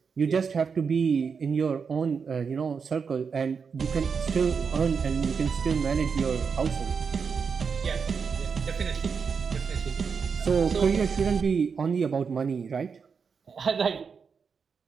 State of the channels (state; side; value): quieter; left; 5.8 dB